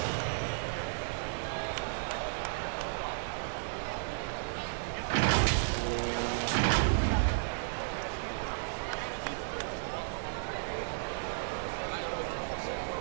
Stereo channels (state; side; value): silent; left; digital silence